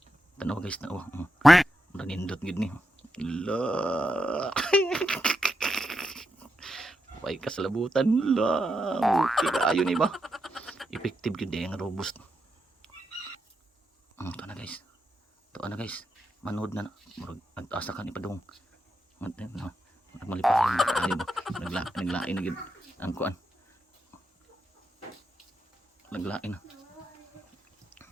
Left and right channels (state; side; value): normal; both; correlation 0.85